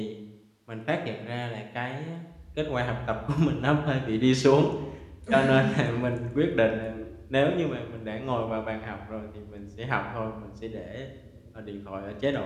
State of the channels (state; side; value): identical; both; correlation 1.00